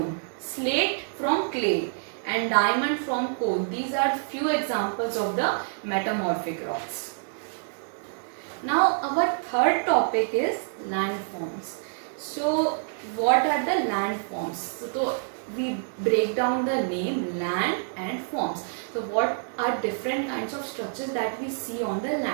slate from clay and diamond from coal. These are few examples of the metamorphic rocks. Now our third topic is landforms. So what are the landforms? So we break down the name land and forms. So what are different kinds of structures that we see on the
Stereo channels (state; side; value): silent; left; digital silence